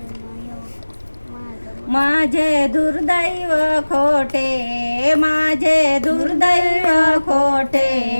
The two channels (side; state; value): both; inverted; correlation -1.00